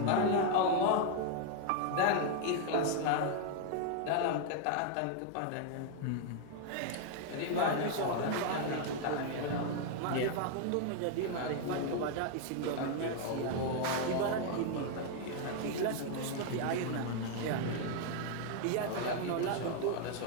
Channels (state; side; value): different; both; correlation 0.00